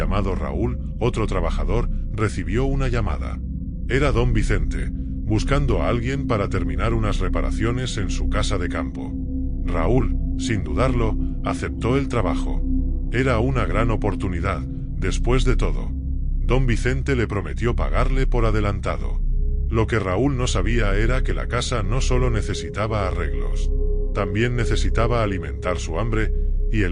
Raúl, otro trabajador, recibió una llamada. Era don Vicente, buscando a alguien para terminar unas reparaciones en su casa de campo. Raúl, sin dudarlo, aceptó el trabajo. Era una gran oportunidad, después de todo. Don Vicente le prometió pagarle por adelantado. Lo que Raúl no sabía era que la casa no solo necesitaba arreglos, también necesitaba alimentar su hambre, y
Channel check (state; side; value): identical; both; correlation 1.00